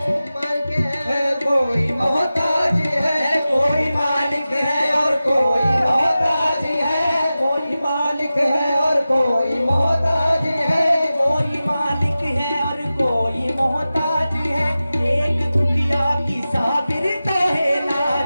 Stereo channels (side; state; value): both; inverted; correlation -0.95